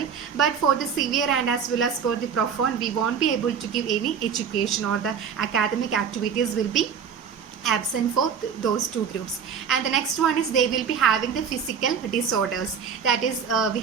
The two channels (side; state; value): left; quieter; 7.1 dB